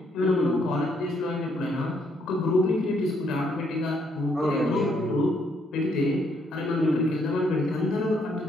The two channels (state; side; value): normal; both; correlation 0.71